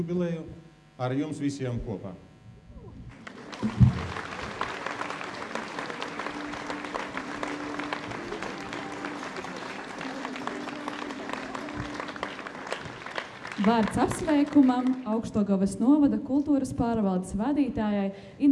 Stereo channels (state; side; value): identical; both; correlation 1.00